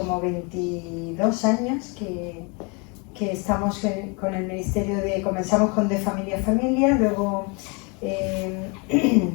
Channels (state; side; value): quieter; right; 31.7 dB